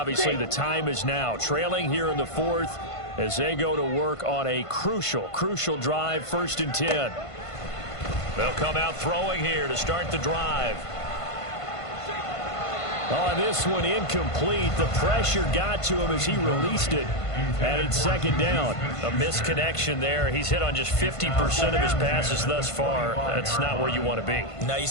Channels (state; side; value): late; right; 1.5 ms